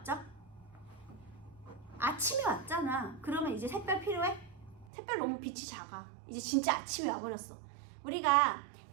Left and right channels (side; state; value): left; drops out; at 4.9 s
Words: 아침이 왔잖아. 그러면 이제 샛별 필요해? 샛별 너무 빛이 작아. 이제 진짜 아침이 와버렸어. 우리가